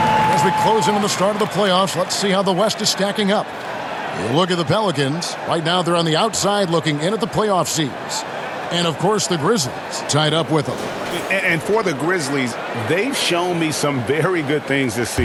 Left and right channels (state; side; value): identical; both; correlation 1.00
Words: As we close in on the start of the playoffs, let's see how the West is stacking up. You look at the Pelicans. Right now they're on the outside looking in at the playoff seeds. And, of course, the Grizzlies tied up with them. And for the Grizzlies, they've shown me some very good things this